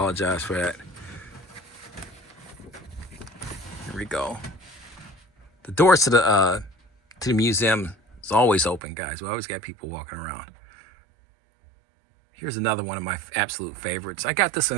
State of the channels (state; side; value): drops out; left; at 8.8 s